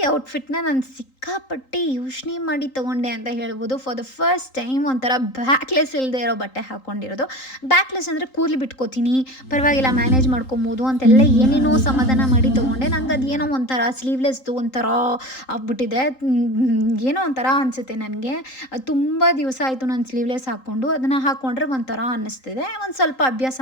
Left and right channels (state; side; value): late; right; 3.8 ms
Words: ಔಟ್ಫಿಟ್ನ ನಾನು ಸಿಕ್ಕಾಪಟ್ಟೆ ಯೋಚನೆ ಮಾಡಿ ತೊಗೊಂಡೆ ಅಂತ ಹೇಳ್ಬೋದು. ಫಾರ್ ದ ಫಸ್ಟ್ ಟೈಮ್ ಒಂಥರ ಬ್ಯಾಕ್ಲೆಸ್ ಇಲ್ಲದೆ ಇರೋ ಬಟ್ಟೆ ಹಾಕ್ಕೊಂಡಿರೋದು. ಬ್ಯಾಕ್ಲೆಸ್ ಅಂದರೆ ಕೂದಲು ಬಿಟ್ಕೋತೀನಿ, ಪರವಾಗಿಲ್ಲ ಮ್ಯಾನೇಜ್ ಮಾಡ್ಕೊಬೋದು ಅಂತೆಲ್ಲ ಏನೇನೋ ಸಮಾಧಾನ ಮಾಡಿ ತೊಗೊಂಡೆ. ನಂಗೆ ಅದೇನೋ ಒಂಥರ ಸ್ಲೀವ್ಲೆಸ್ದು ಒಂಥರ ಆಗ್ಬಿಟ್ಟಿದೆ, ಏನೋ ಒಂಥರ ಅನಿಸುತ್ತೆ ನನಗೆ. ತುಂಬ ದಿವಸ ಆಯಿತು ನಾನು ಸ್ಲೀವ್ಲೆಸ್ ಹಾಕ್ಕೊಂಡು. ಅದನ್ನು ಹಾಕ್ಕೊಂಡ್ರೆ ಒಂಥರ ಅನ್ನಿಸ್ತಿದೆ. ಒಂದು ಸ್ವಲ್ಪ ಅಭ್ಯಾಸ